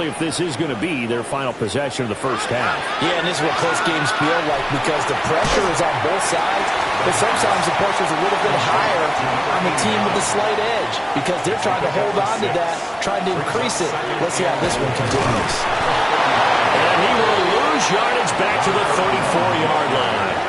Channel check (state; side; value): identical; both; correlation 1.00